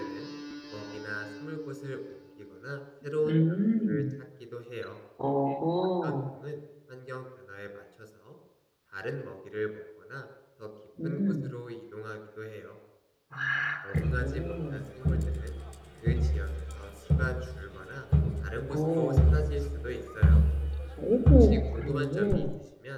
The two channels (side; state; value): both; identical; correlation 1.00